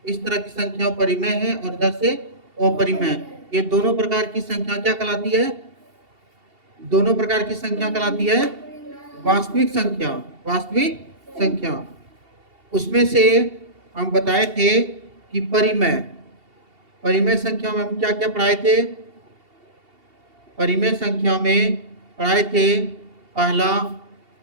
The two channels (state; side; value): late; left; 2.7 ms